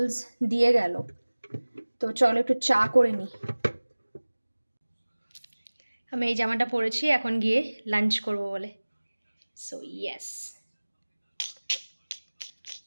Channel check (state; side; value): inverted; both; correlation -1.00